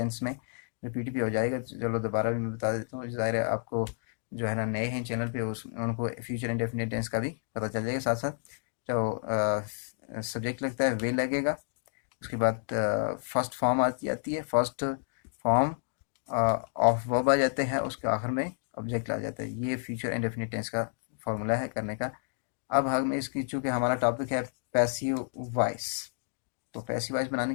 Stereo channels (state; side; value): silent; right; digital silence